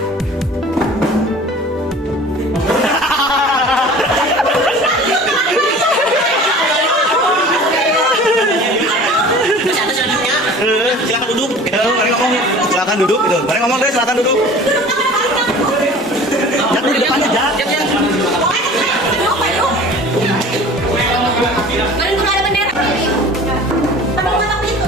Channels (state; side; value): normal; both; correlation 0.43